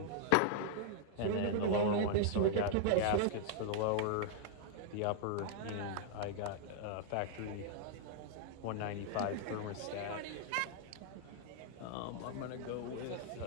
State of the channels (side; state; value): both; different; correlation -0.01